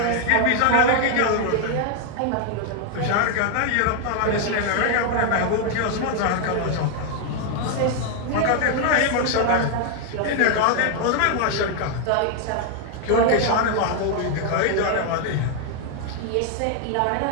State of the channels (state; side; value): different; both; correlation 0.00